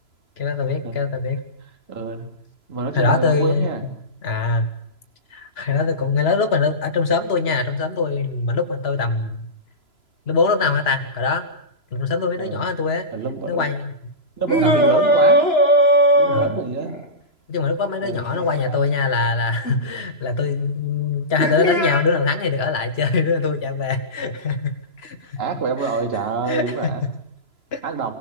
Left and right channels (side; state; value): right; late; 3.0 ms